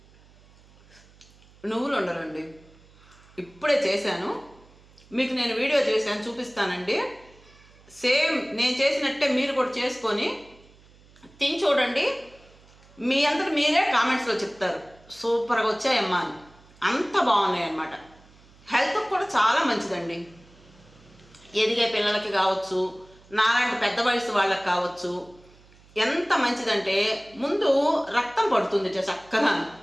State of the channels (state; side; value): noise; right; hum, 27 dB below the sound